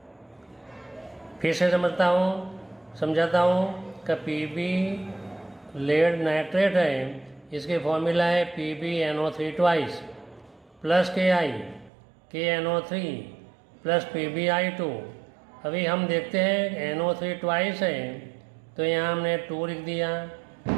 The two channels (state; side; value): drops out; left; at 11.9 s